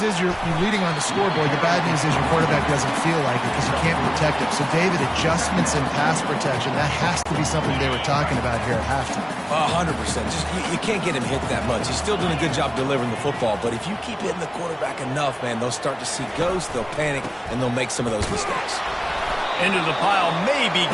you're leading on the scoreboard. The bad news is your quarterback doesn't feel like it because you can't protect him. So, David, adjustments in pass protection, that has to be something they were talking about here at halftime. 100%. Just you can't get him hit that much. He's still doing a good job delivering the football, but if you keep hitting the quarterback enough, man, they'll start to see ghosts, they'll panic, and they'll make some of those mistakes. Into the pile, maybe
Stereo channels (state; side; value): identical; both; correlation 1.00